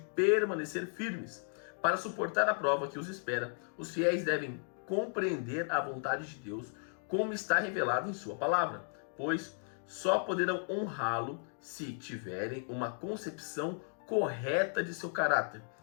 firmes. Para suportar a prova que os espera, os fiéis devem compreender a vontade de Deus como está revelado em sua palavra, pois só poderão honrá-lo se tiverem uma concepção correta de seu caráter,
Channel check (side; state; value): right; silent; 54 dB below the other